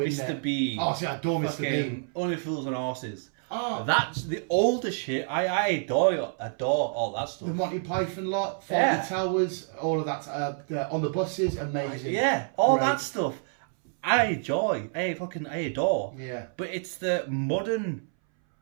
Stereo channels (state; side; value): silent; left; 59 dB below the other